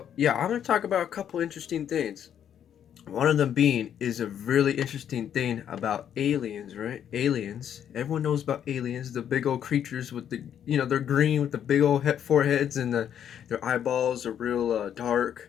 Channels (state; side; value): quieter; right; 9.3 dB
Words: yeah, I'm gonna talk about a couple interesting things. One of them being is a really interesting thing about aliens, right? Aliens. Everyone knows about aliens, the big old creatures with the, they're green with the big old foreheads and their eyeballs are real